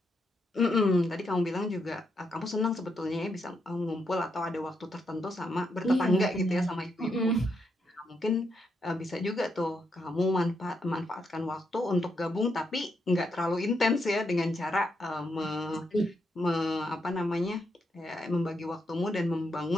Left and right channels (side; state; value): both; normal; correlation 0.80